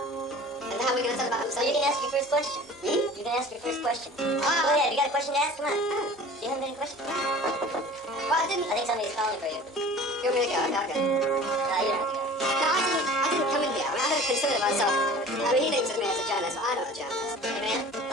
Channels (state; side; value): normal; both; correlation 0.43